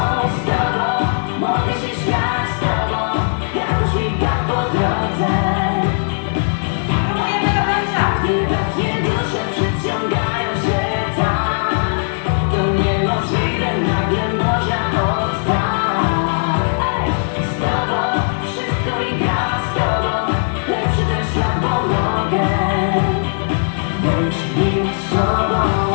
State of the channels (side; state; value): right; silent; digital silence